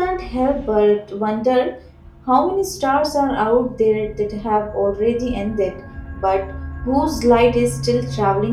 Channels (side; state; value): both; identical; correlation 1.00